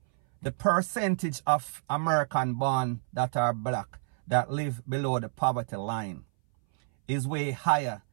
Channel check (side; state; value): left; silent; 59 dB below the other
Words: The percentage of American born that are black that live below the poverty line is way higher